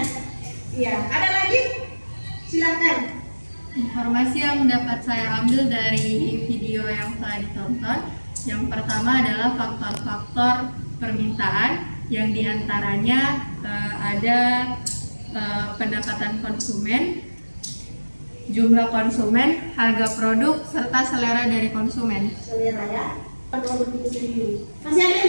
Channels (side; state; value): both; inverted; correlation -1.00